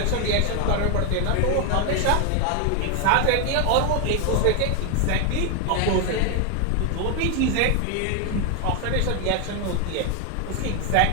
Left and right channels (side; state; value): both; different; correlation 0.01